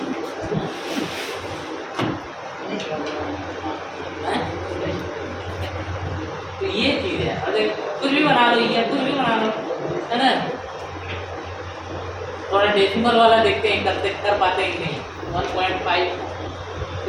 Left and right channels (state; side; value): identical; both; correlation 1.00